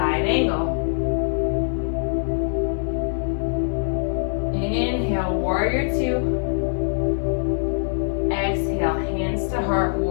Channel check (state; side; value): silent; right; digital silence